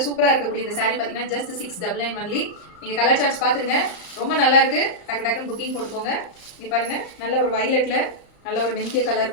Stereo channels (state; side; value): late; right; 34 ms